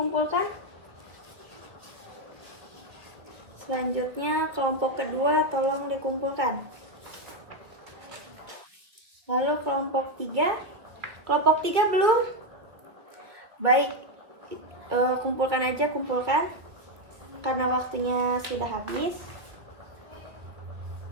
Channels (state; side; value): late; left; 1.9 ms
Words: Selanjutnya kelompok kedua tolong dikumpulkan. Lalu kelompok 3. Kelompok 3 belum? Baik. Kumpulkan karena waktunya sudah habis.